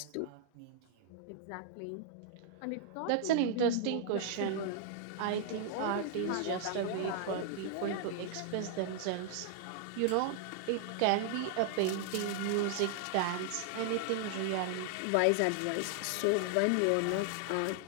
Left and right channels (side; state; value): both; different; correlation -0.01